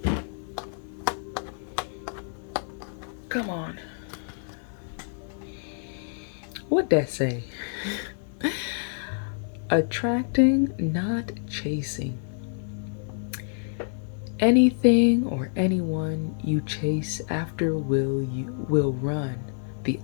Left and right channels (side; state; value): right; silent; 57 dB below the other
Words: Come on. What'd that say? Attracting, not chasing. Anything or anyone you chase after will run the